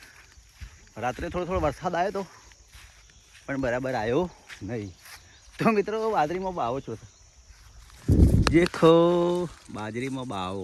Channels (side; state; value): both; identical; correlation 1.00